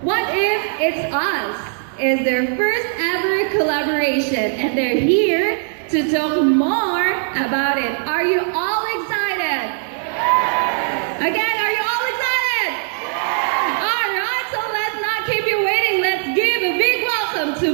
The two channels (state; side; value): silent; left; digital silence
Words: What If It's Us is their first ever collaboration, and they're here to talk more about it. Are you all excited? Yes! Again, are you all excited? Yes! All right, so let's not keep you waiting. Let's give a big welcome